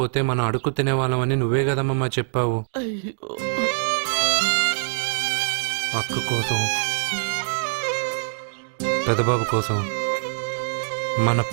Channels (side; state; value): left; silent; digital silence